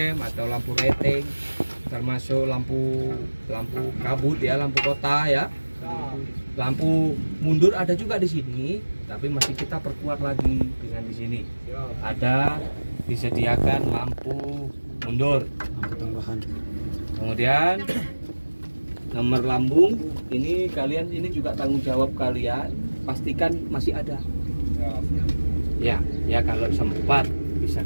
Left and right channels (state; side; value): inverted; both; correlation -1.00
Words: atau lampu rating, termasuk lampu kabut ya, lampu kota ya. Lampu mundur ada juga di sini, tapi masih kita perkuat lagi dengan di sini. Ada disediakan lampu mundur. Lampu tambahan. Kemudian nomor lambung ini kalian, ini juga tanggung jawab kalian, pastikan masih ada. Ya kalau sempat bisa